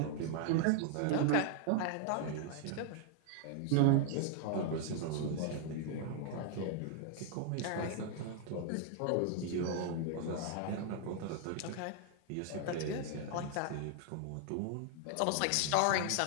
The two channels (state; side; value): different; both; correlation 0.00